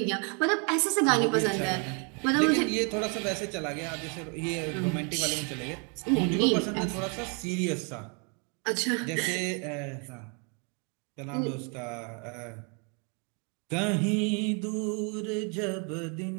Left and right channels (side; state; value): left; quieter; 36.3 dB